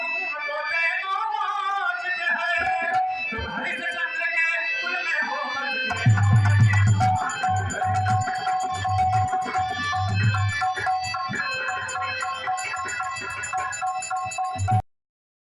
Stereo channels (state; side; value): identical; both; correlation 1.00